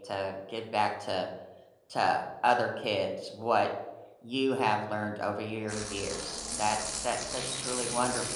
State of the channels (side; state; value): both; identical; correlation 1.00